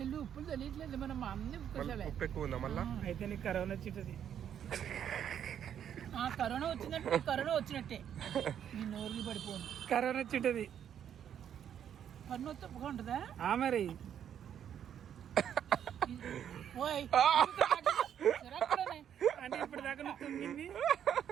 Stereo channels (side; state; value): left; quieter; 9.3 dB